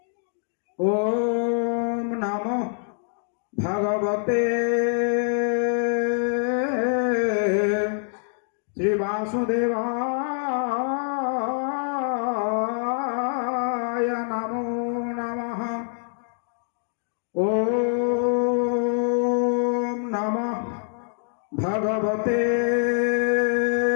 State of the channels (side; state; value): right; silent; digital silence